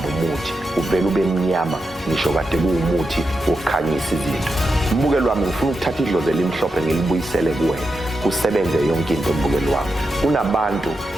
umuthi, uvele ube mnyama ngisho kade kuwumuthi wokukhanyisa izinto. Mbukeli wami, ngifuna ukuthatha idlozi elimhlophe ngilibuyisele kuwena, kusebenze yonke into. Mbukeli wami, kunabantu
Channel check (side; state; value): both; normal; correlation 0.88